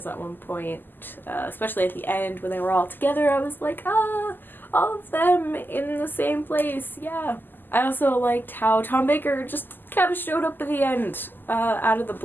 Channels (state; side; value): late; right; 0.091 ms